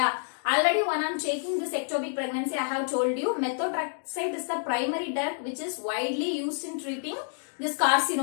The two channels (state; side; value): silent; right; digital silence